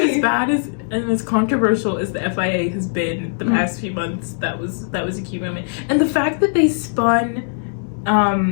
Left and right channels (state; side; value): silent; right; digital silence